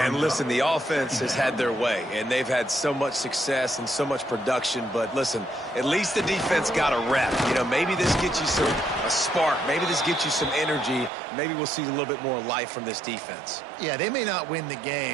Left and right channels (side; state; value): left; drops out; at 11.1 s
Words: and listen, the offense has had their way, and they've had so much success and so much production. But listen, at least the defense got a rep. You know, maybe this gets you a spark. Maybe this gets you some energy. Maybe we'll see a little bit more life from this defense. Yeah, they may not win the